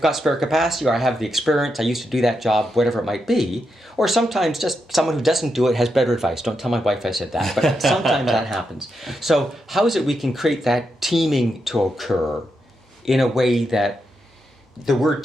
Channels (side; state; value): both; normal; correlation 0.84